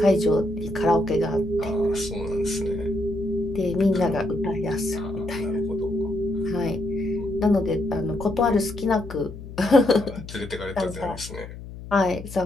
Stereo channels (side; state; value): left; noise; hum, 13 dB below the sound